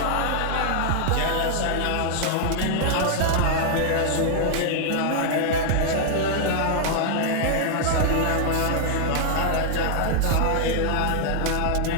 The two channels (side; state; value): both; different; correlation -0.01